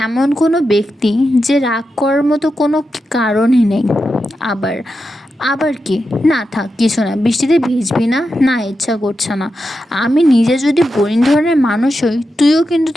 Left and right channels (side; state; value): both; normal; correlation 0.88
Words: এমন কোনো ব্যক্তি যে রাগ করার মতো কোনো কারণই নেই। আবার কি? না থাক, কিছু না, বৃষ্টিতে ভিজবি না? না, ইচ্ছা করছে না। আমি নিজে যদি বোরিং ধরনের মানুষ হই, তুইও কিন্তু